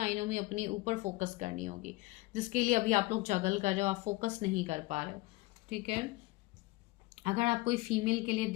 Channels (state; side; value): quieter; right; 20.7 dB